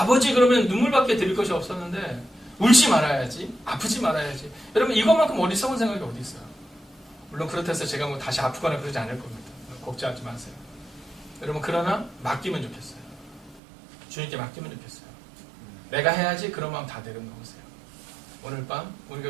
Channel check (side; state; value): left; drops out; at 13.6 s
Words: 그러면 눈물밖에 드릴 것이 없었는데 울지 말아야지. 아프지 말아야지. 여러분 이것만큼 어리석은 생각이 어디 있어요. 물론 그렇다 해서 제가 뭐 다시 아프거나 그러지 않을 겁니다. 걱정하지 마세요. 여러분 그러나 맡기면 좋겠어요. 주님께 맡기면 좋겠어요. 내가 해야지 그런 마음 다 내려놓으세요. 오늘 밤